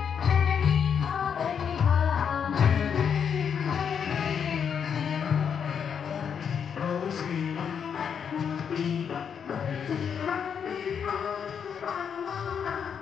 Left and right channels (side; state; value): right; quieter; 7.4 dB